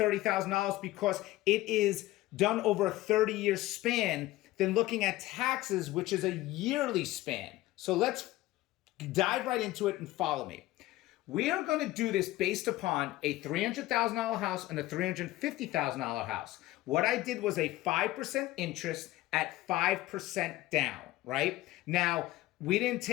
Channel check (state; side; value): quieter; right; 17.0 dB